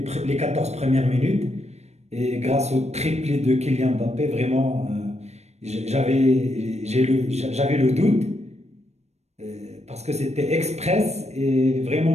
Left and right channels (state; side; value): late; left; 0.32 ms